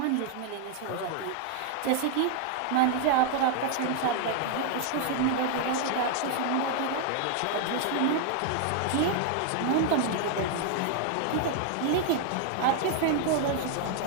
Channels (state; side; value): different; both; correlation 0.00